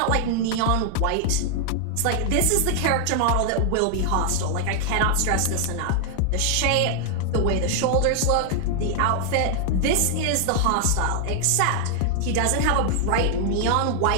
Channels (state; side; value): different; both; correlation 0.00